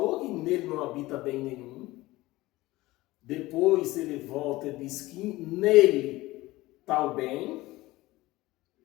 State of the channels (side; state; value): right; quieter; 18.9 dB